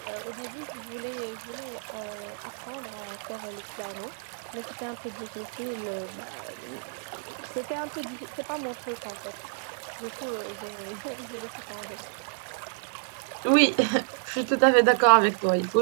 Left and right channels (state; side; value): silent; left; digital silence